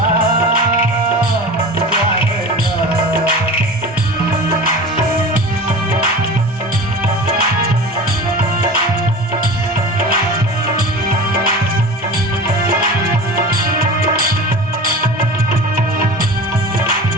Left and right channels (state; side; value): normal; both; correlation 0.34